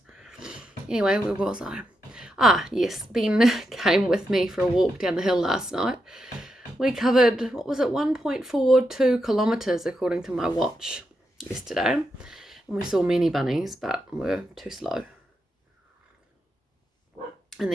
Anyway, where was I? Ah, yes, Ben came with me for a walk down the hill last night. We covered, 1.42 kilometres according to my watch yesterday. And we saw many bunnies, but we're too slow. And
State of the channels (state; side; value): normal; both; correlation 0.85